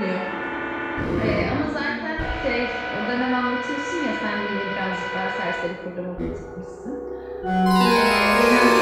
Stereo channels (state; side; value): identical; both; correlation 1.00